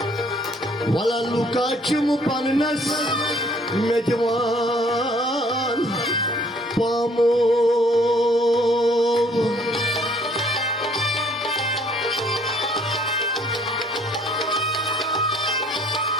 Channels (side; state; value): both; normal; correlation 0.60